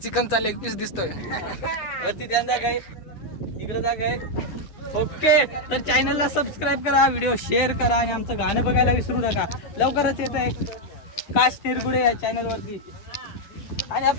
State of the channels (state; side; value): late; right; 10 ms